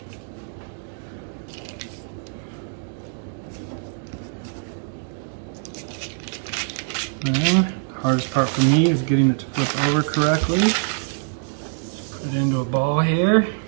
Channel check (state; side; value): silent; left; digital silence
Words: And hardest part for me is getting it to flip over correctly. Put it into a ball here.